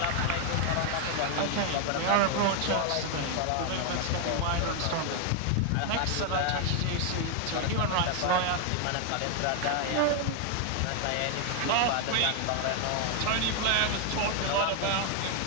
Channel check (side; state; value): both; different; correlation 0.01